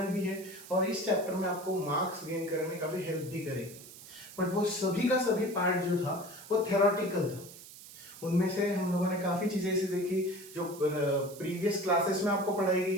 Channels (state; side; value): noise; right; hiss, 17 dB below the sound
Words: भी है और इस चैप्टर में आपको मार्क्स गेन करने में काफी हेल्प भी करेगी. बट वो सभी का सभी पार्ट जो था वो थ्योरेटिकल था. उनमें से हम लोगों ने काफी चीजें ऐसी देखी जो प्रीवियस क्लासेस में आपको पढ़ाई